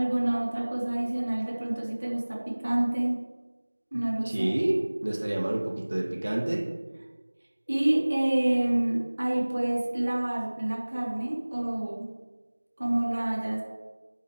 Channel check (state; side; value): inverted; both; correlation -1.00